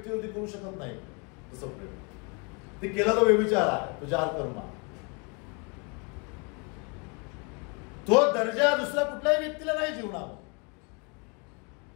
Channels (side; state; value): right; quieter; 33.3 dB